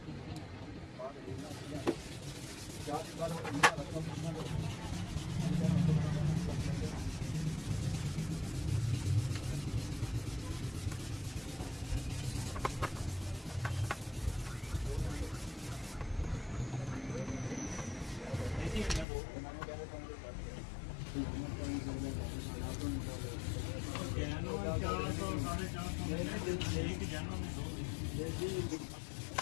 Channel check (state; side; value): drops out; right; at 19.1 s